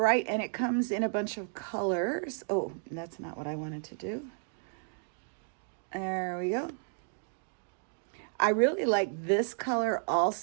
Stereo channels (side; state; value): left; silent; digital silence